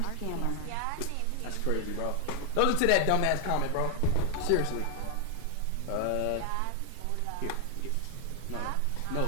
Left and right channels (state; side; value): different; both; correlation 0.00